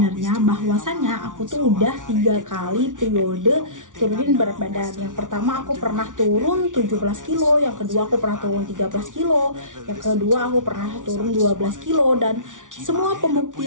bahwasannya aku tuh udah 3 kali periode turunin berat badan. Yang pertama aku pernah turun 17 kilo, yang kedua aku pernah turun 13 kilo, yang kedua aku pernah turun 12 kilo, dan semua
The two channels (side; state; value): left; late; 0.87 ms